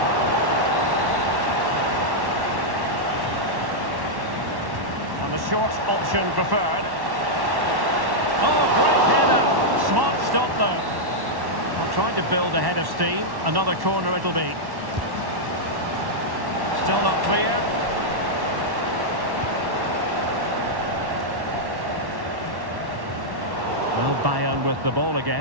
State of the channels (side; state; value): left; late; 1.1 ms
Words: And the short option preferred. Oh, great header. Smart stop, though. I'm trying to build a head of steam. Another corner it'll be. Still not clear. Well, Bayern with the ball